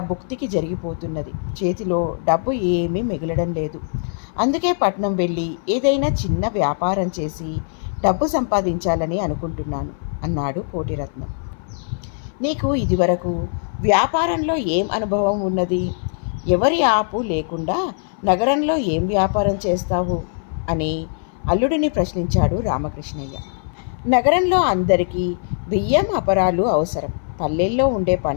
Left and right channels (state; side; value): silent; right; 59 dB below the other